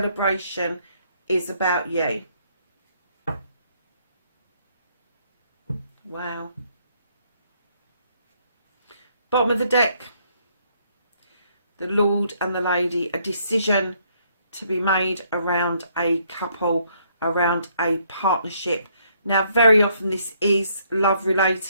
is about you. Wow. Bottom of the deck. The Lord and the Lady. A decision to be made around a couple, around a partnership. Now, very often this is love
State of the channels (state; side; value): inverted; both; correlation -0.68